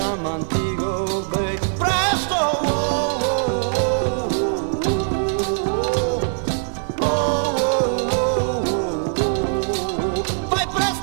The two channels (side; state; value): left; silent; 64 dB below the other